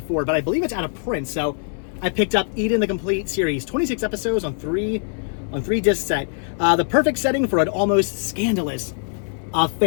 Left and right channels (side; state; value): right; silent; 64 dB below the other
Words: but I believe it's out of print. So I picked up Eden, the complete series, 26 episodes on 3 disc set. The perfect setting for an almost scandalous